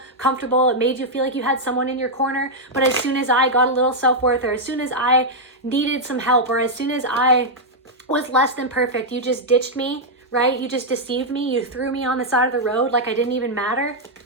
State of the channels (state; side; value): normal; both; correlation -0.03